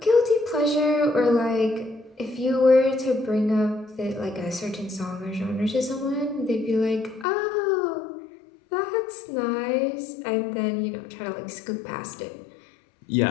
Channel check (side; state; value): right; drops out; at 7.2 s